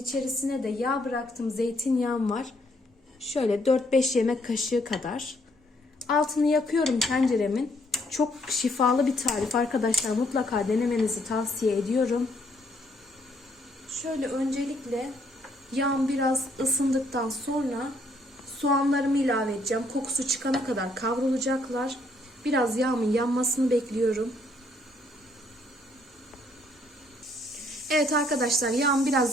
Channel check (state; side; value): normal; both; correlation 0.69